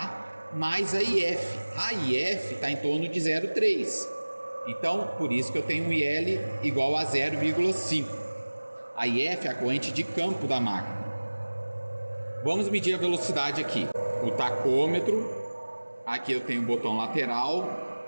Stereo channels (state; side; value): inverted; both; correlation -1.00